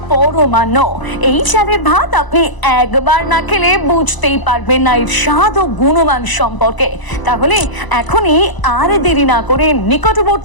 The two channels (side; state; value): right; late; 1.0 ms